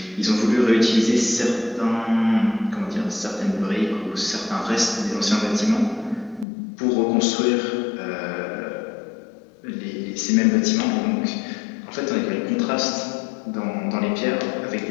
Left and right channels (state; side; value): drops out; right; at 6.5 s